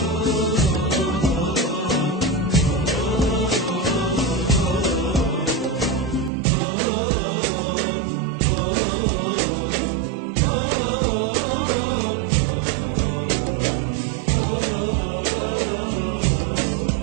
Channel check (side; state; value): left; drops out; at 6.3 s